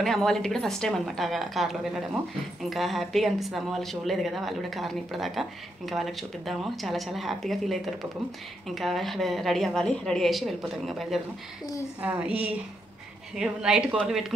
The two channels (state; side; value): normal; both; correlation 0.80